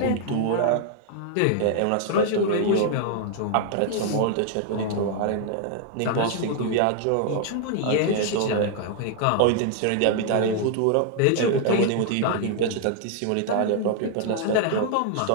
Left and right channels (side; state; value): both; different; correlation 0.00